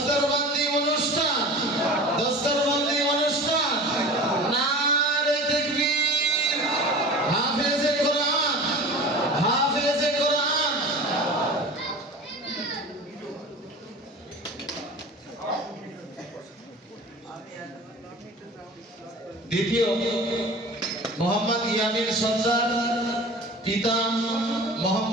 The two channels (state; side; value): normal; both; correlation 0.38